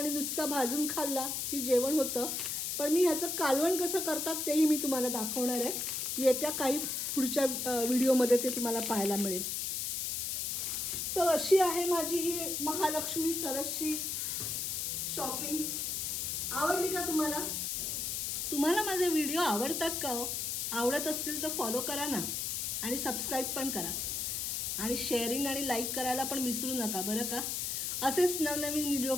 नुसता भाजून खाल्ला की जेवण होतं, पण मी ह्याचं कालवण कसं करतात तेही मी तुम्हाला दाखवणार आहे. येत्या काही पुढच्या व्हिडिओमध्ये ते तुम्हाला पाहायला मिळेल. तर अशी आहे माझी ही महालक्ष्मी सरसची शॉपिंग. आवडली का तुम्हाला? तुम्हाला माझे व्हिडिओ आवडतात का हो? आवडत असतील तर फॉलो करा ना आणि सबस्क्राईब पण करा आणि शेअरिंग आणि लाईक करायला पण विसरू नका बरं का. असेच नवनवीन व्हिडिओ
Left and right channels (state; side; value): noise; left; hiss, 1 dB below the sound